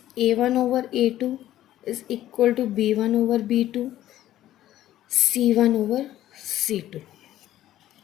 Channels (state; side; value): quieter; right; 13.3 dB